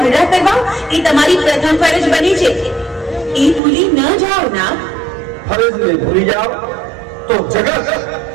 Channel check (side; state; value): left; drops out; at 3.6 s